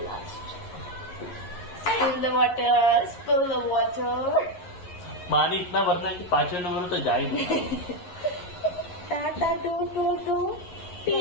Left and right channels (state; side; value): late; right; 11 ms